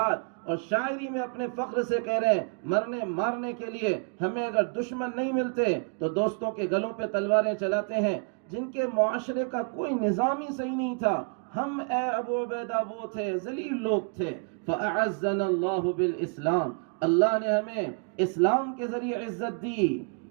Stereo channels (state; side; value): quieter; left; 38.4 dB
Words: اور شاعری میں اپنے فخر سے کہہ رہے ہیں مرنے مارنے کے لیے ہمیں اگر دشمن نہیں ملتے تو دوستوں کے گلوں پہ تلواریں چلاتے ہیں، جن کے معاشرے کا کوئی نظام ہی صحیح نہیں تھا۔ ہم اے ابو عبیدہ وہ تھے، ذلیل لوگ تھے۔ فَأَعَزَّنَا اللَّهُ بِالْإِسْلَامِ، اللہ نے ہمیں اسلام کے ذریعے عزت دی،